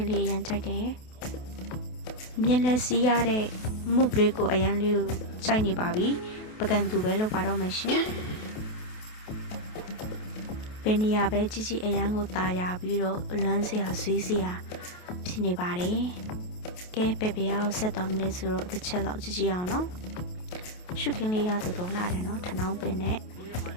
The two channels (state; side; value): late; right; 28 ms